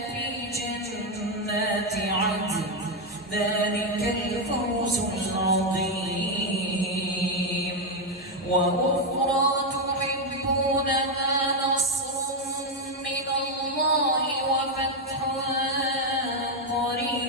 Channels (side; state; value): both; normal; correlation 0.04